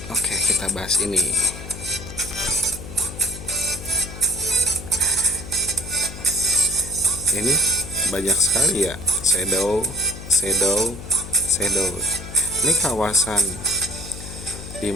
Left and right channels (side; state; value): left; noise; hum, 11 dB below the sound